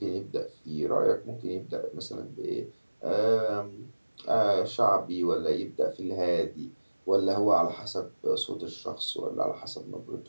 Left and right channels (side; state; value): both; inverted; correlation -1.00